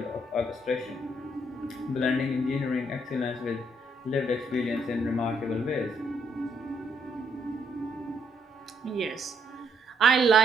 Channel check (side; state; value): both; normal; correlation 0.72